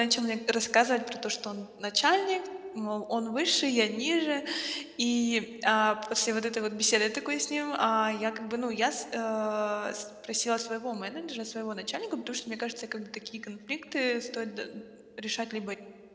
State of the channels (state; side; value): identical; both; correlation 1.00